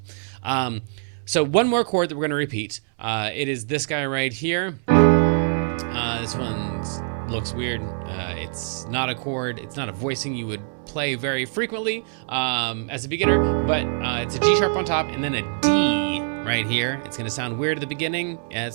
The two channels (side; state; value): left; silent; digital silence